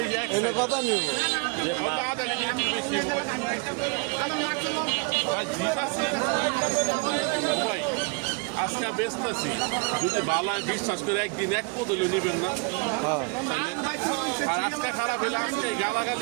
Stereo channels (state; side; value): quieter; left; 30.8 dB